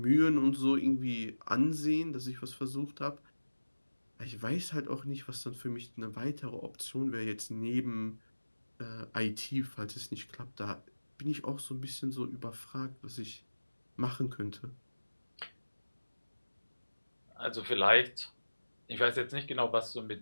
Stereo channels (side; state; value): both; inverted; correlation -1.00